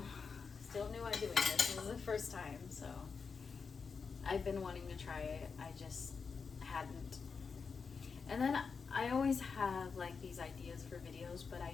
at doing this. This is the first time, so I've been wanting to try it. I just hadn't. And then I always have like these ideas for videos, but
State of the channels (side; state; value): right; quieter; 5.4 dB